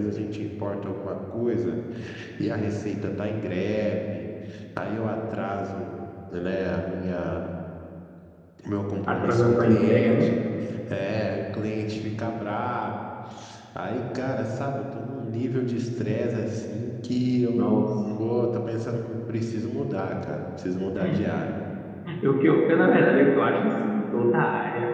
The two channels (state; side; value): identical; both; correlation 1.00